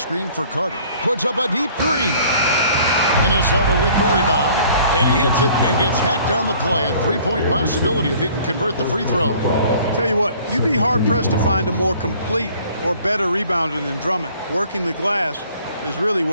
for Carter. Puts up a deep three. Minnesota with the rebound. And he hits it and gets hacked on the play. A three-point possibility if he can convert the free throw. Tell you what, you'd be hard-pressed to find a more complete or better rebounder than Drummond. Working the glass is really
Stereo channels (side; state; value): both; inverted; correlation -0.54